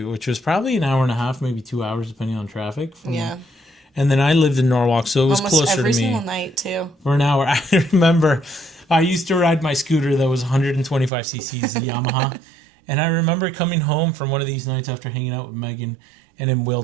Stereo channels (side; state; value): left; drops out; at 11.1 s